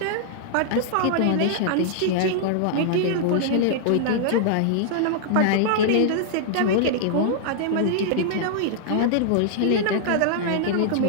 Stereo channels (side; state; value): both; different; correlation -0.01